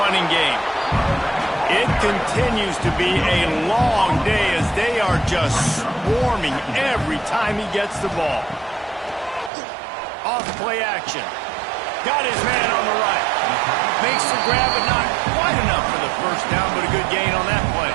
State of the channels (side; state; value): left; drops out; at 9.5 s